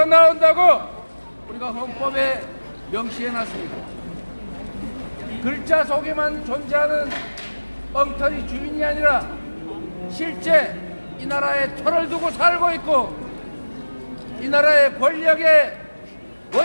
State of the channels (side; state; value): both; inverted; correlation -1.00